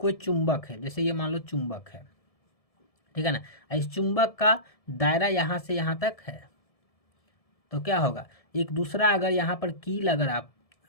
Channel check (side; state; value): right; late; 1.7 ms